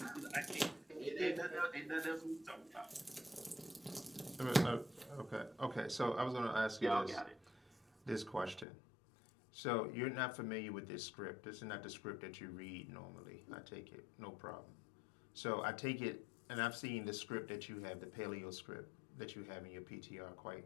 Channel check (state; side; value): drops out; right; at 8.7 s